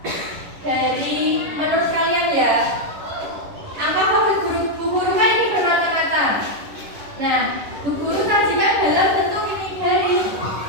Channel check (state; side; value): late; left; 10 ms